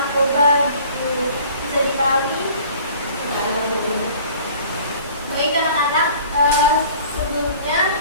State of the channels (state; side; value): inverted; both; correlation -0.49